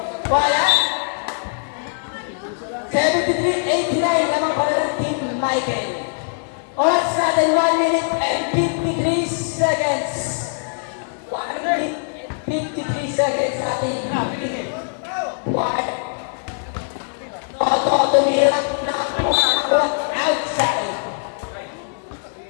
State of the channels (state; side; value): silent; right; digital silence